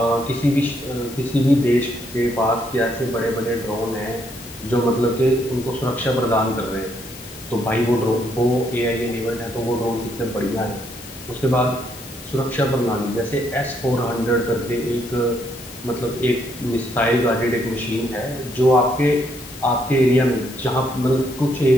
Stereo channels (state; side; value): noise; left; hiss, 17 dB below the sound